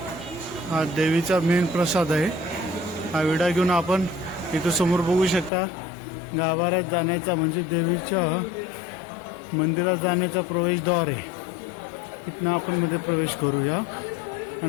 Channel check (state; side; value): drops out; right; at 5.5 s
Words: हा देवीचा मेन प्रसाद आहे. हा विडा घेऊन आपण इथं समोर बघू शकता गाभाऱ्यात जाण्याचा म्हणजे देवीच्या मंदिरात जाण्याचा प्रवेशद्वार आहे. इथनं आपण मध्ये प्रवेश करूया.